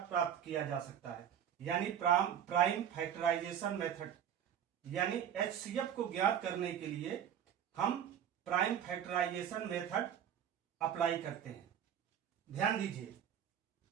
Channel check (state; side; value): quieter; left; 9.3 dB